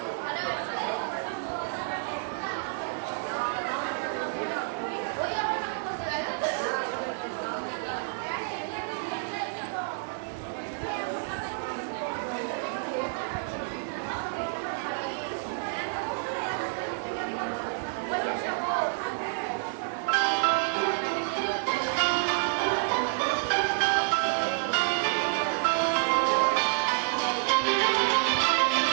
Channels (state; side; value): silent; left; 58 dB below the other